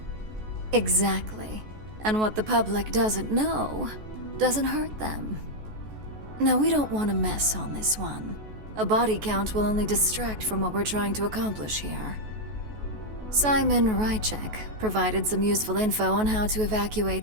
Exactly. And what the public doesn't know doesn't hurt them. Now, we don't want to mess on this one. A body count will only distract from what we're trying to accomplish here. Simon Rychek provided some useful info on how to evacuate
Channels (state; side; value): late; left; 14 ms